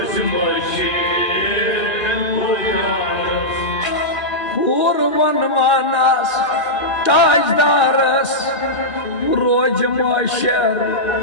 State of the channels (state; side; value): late; right; 2.5 ms